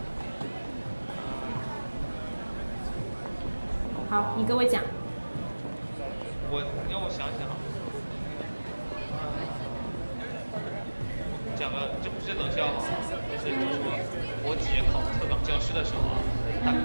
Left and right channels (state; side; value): inverted; both; correlation -1.00